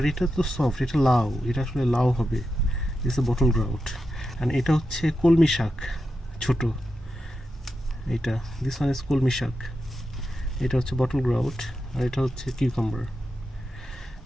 এটা তো সফট, এটা লাউ, এটা আসলে লাউ হবে। This A bottle grout. And এটা হচ্ছে কলমি শাক, ছোট। এটা দিস ওয়ান ইজ কলমি শাক। এটা হচ্ছে বটল গ্রাউট, আর এটা হচ্ছে কিউকাম্বার।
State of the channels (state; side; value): normal; both; correlation 0.89